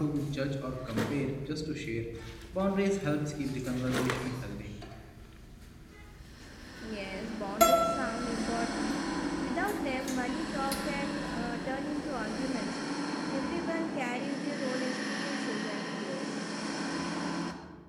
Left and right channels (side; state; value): both; identical; correlation 1.00